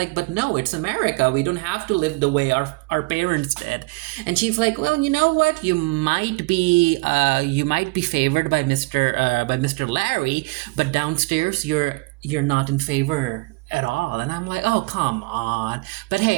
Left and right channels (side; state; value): left; quieter; 26.1 dB